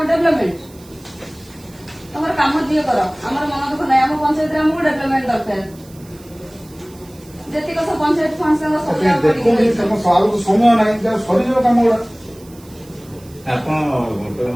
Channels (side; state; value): right; noise; hiss, 25 dB below the sound